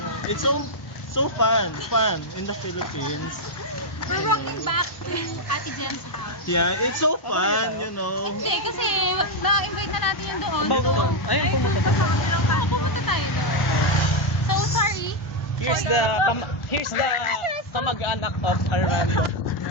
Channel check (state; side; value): normal; both; correlation 0.03